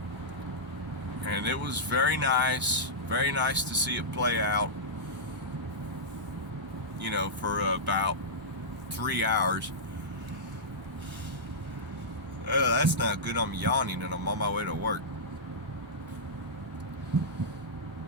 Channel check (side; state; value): both; normal; correlation -0.11